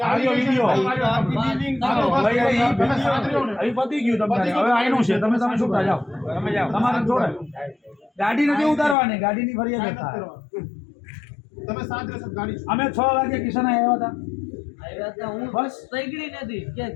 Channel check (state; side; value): drops out; right; at 9.0 s